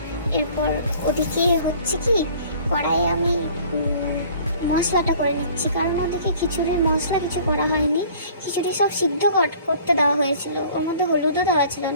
এরপর ওদিকে হচ্ছে কি, কড়াইয়ে আমি মশলাটা করে নিচ্ছি, কারণ ওদিকে খিচুড়ির মশলা কিছু করা হয়নি। খিচুড়ি সব সিদ্ধ করতে দেওয়া হয়েছিল, ওর মধ্যে হলুদও দেওয়া ছিল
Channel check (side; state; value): both; inverted; correlation -0.51